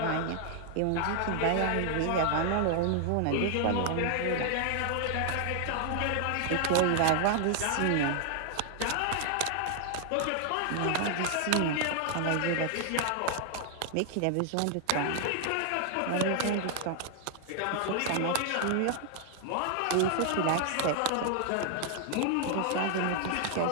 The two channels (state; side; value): different; both; correlation 0.00